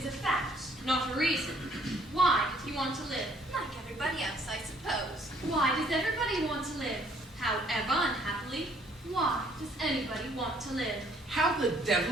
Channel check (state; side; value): normal; both; correlation 0.63